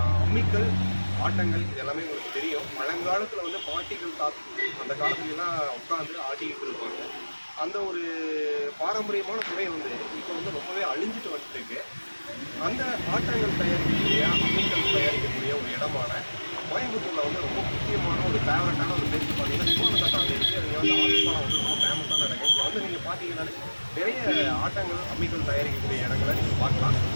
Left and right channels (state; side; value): inverted; both; correlation -1.00